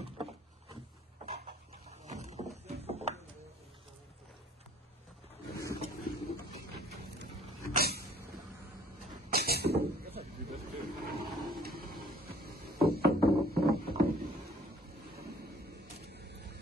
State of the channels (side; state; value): both; normal; correlation 0.55